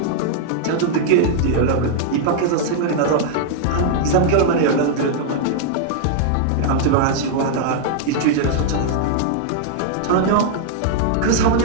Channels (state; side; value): different; both; correlation -0.01